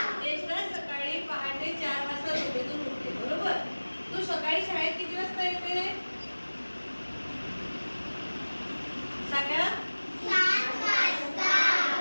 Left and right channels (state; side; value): inverted; both; correlation -1.00